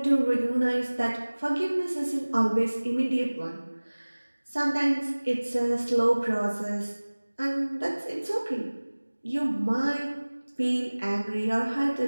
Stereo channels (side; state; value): both; inverted; correlation -1.00